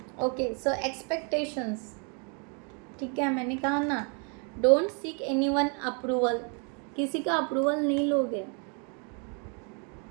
ओके। सो एक्सपेक्टेशंस, ठीक है, मैंने कहा ना, डोंट सीक एनीवन अप्रूवल, किसी का अप्रूवल नहीं लोगे,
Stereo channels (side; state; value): left; quieter; 37.3 dB